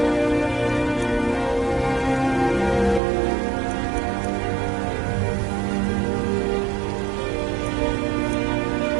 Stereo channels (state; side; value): drops out; left; at 3.0 s